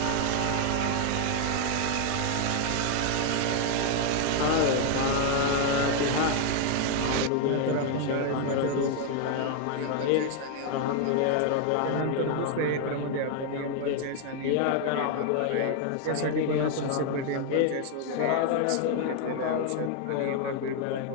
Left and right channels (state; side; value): different; both; correlation 0.00